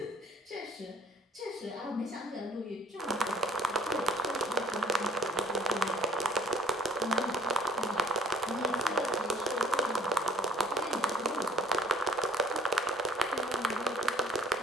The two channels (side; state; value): both; normal; correlation 0.56